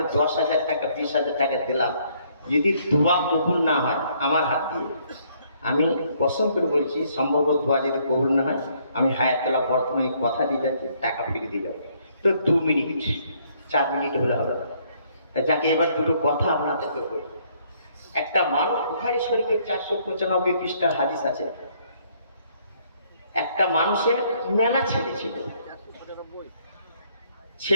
10,000 টাকা 20,000 টাকা দিলাম, যদি দোয়া কবুল না হয় আমার হাত দিয়ে, আমি কসম করে বলছি সম্ভবত দোয়া যদি কবুল না হয়, আমি হায়াতুল্লাহ বর্তমানে কথা দিয়ে যাচ্ছি, টাকা ফিরে দিয়ে যাবো। তো 2 মিনিট 4 মিনিট হলে হবে না। যাকে এবার দুটো কথা আপনাদেরকে বলি। একটা মানুষ, বুখারী শরীফের 495 পৃষ্ঠার হাদিস আছে, একটা মানুষের মেলা ছেলে ছিল,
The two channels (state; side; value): inverted; both; correlation -0.67